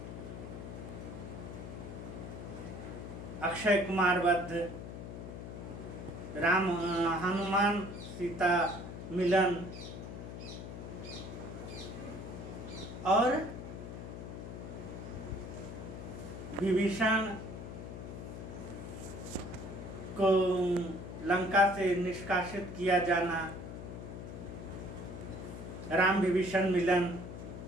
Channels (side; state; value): left; noise; hum, 9 dB below the sound